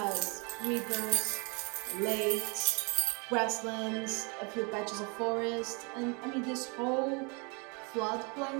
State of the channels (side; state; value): left; quieter; 32.5 dB